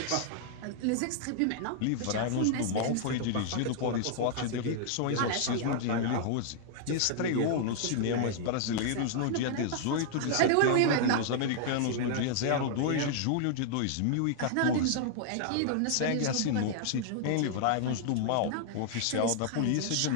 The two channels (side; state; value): both; different; correlation -0.01